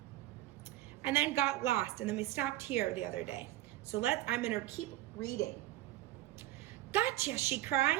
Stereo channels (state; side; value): quieter; left; 15.2 dB